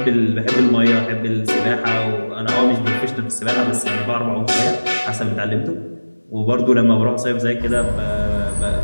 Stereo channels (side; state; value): both; inverted; correlation -1.00